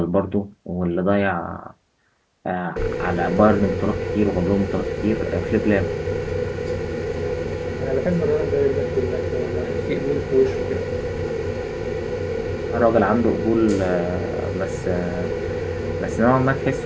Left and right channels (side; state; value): both; identical; correlation 1.00